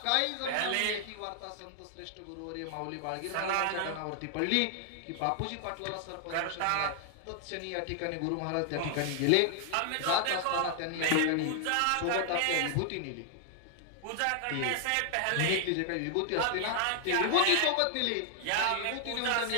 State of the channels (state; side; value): different; both; correlation 0.00